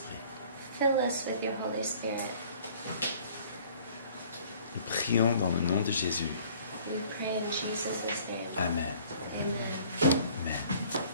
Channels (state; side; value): inverted; both; correlation -0.54